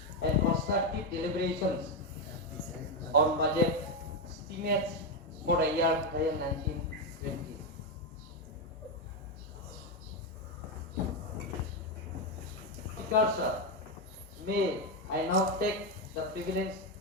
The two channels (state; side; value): normal; both; correlation 0.07